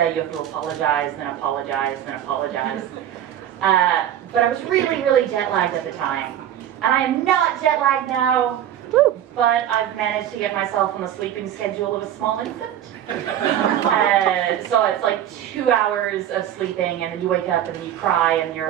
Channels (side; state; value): left; quieter; 10.9 dB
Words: you have to apologize, then apologize, then apologize. But I was really, really jet lagged at the time. And I am not jet lagged now, but I've managed to get myself on the sleeping schedule of a small infant. So it's like 2 hours of sleeping, and then you wake up and then you cry and you're